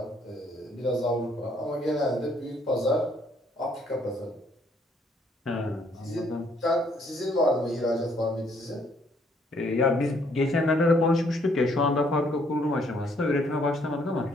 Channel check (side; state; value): both; normal; correlation 0.66